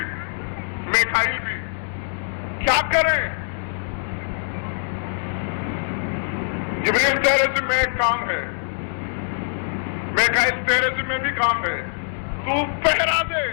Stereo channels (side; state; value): right; silent; digital silence